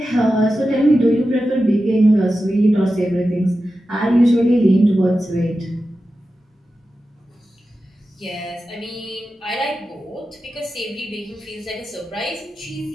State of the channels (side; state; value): both; normal; correlation 0.92